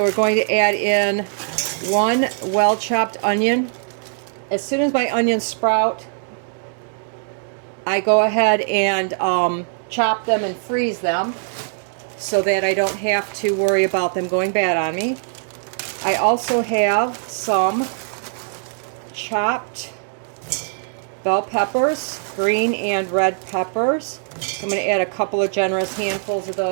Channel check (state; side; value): silent; left; digital silence